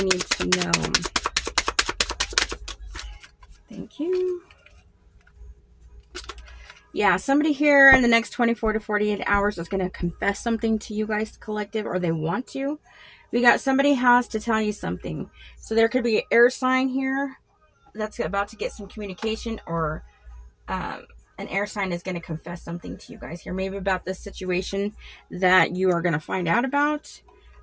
need to know? Thank you. Yeah, somebody here in the next 24 to 48 hours is going to confess something to you guys, collective, or they want to. We got somebody has to tell you something. So there could be an air sign here that's about to get some communication, or an air sign is going to confess something to you guys here, maybe about this situation that you are going to find out about.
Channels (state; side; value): identical; both; correlation 1.00